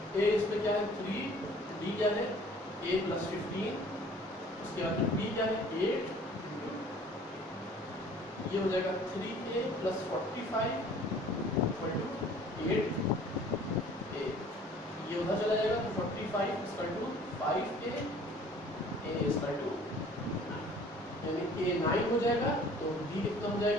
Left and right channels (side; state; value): both; normal; correlation 0.51